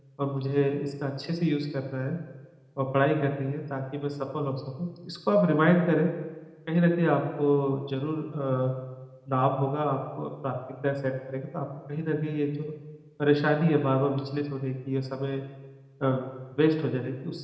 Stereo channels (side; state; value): both; identical; correlation 1.00